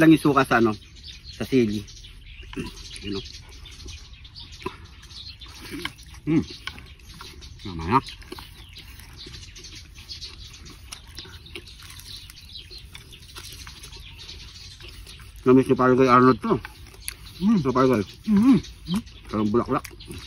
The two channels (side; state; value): both; identical; correlation 1.00